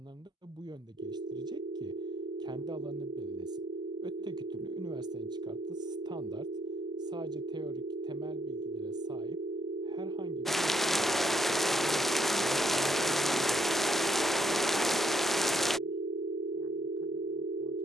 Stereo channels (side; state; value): both; normal; correlation 0.71